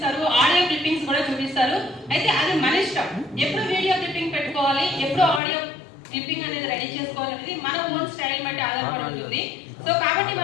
ఆడియో క్లిప్పింగ్స్ కూడా చూపిస్తారు. అయితే అది మన ఇష్టం, ఎప్పుడు వీడియో క్లిప్పింగ్ పెట్టుకోవాలి, ఎప్పుడు ఆడియో క్లిప్పింగ్ అనేది రెడీ చేసుకోవాలనేది మన ఓన్ స్టైల్ బట్టి ఆధారపడి ఉంటుంది. సో కాబట్టి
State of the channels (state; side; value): drops out; right; at 5.4 s